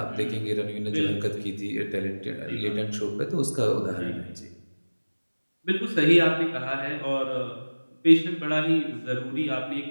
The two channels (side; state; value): both; inverted; correlation -1.00